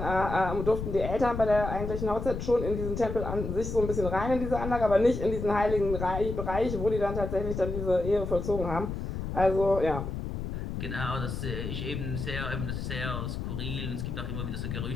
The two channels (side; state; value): left; noise; rumble, 5 dB below the sound